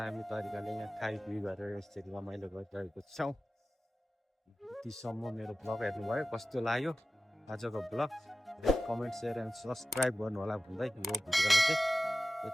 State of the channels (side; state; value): both; normal; correlation 0.95